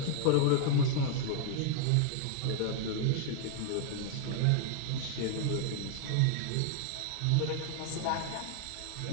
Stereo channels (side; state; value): both; different; correlation 0.00